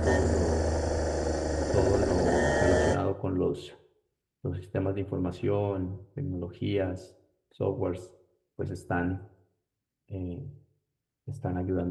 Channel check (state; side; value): identical; both; correlation 1.00